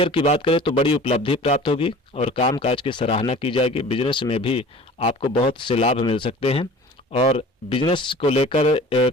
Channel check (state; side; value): normal; both; correlation 0.44